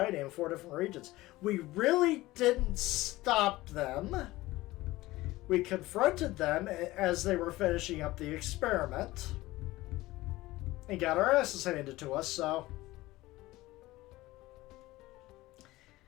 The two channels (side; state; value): right; quieter; 18.4 dB